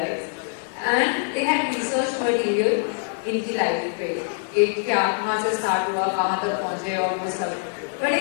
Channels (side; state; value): right; silent; digital silence